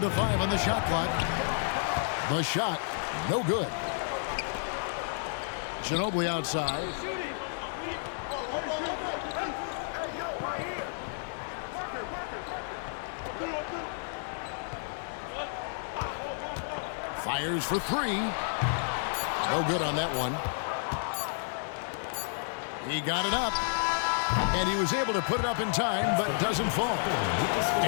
to 5 on the shot clock. The shot, no good. Ginobili outside. Fires for 3. No good on that one. He got it up. And he was able to put it up in time, but doesn't fall.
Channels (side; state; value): right; silent; digital silence